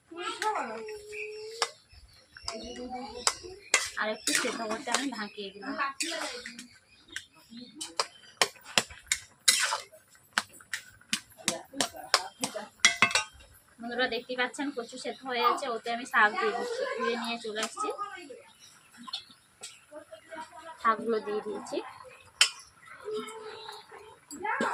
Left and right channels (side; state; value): both; identical; correlation 1.00